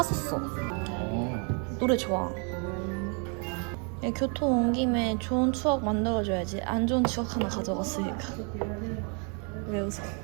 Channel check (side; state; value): left; quieter; 37.8 dB